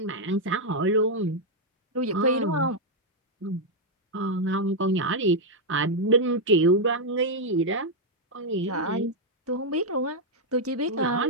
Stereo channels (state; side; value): normal; both; correlation -0.02